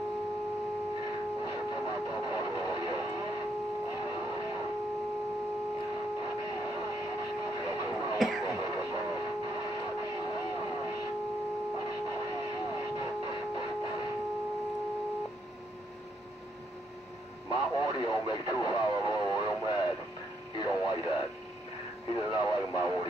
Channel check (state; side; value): normal; both; correlation 0.74